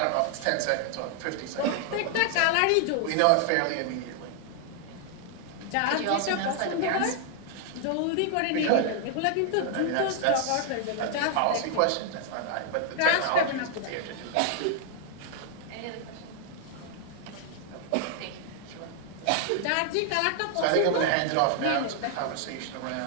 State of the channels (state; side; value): different; both; correlation 0.00